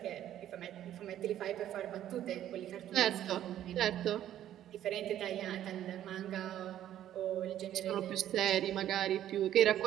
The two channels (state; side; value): quieter; left; 11.7 dB